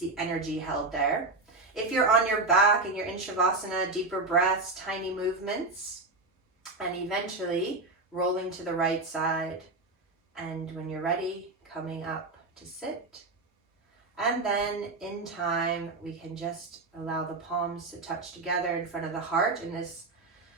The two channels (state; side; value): quieter; left; 3.3 dB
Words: energy held there. If you're on your back and you're in Shavasana, deeper breaths, tiny movements, and eventually rolling to the right side. And when you're ready, coming up to sit. And then in time, we can just allow the palms to touch together in front of the heart in this